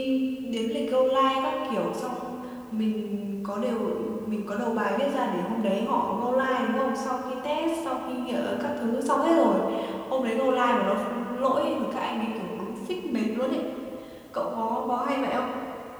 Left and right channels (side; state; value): both; identical; correlation 1.00